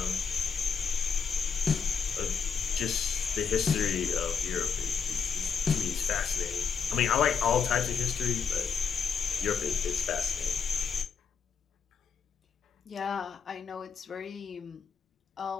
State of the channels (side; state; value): right; quieter; 6.4 dB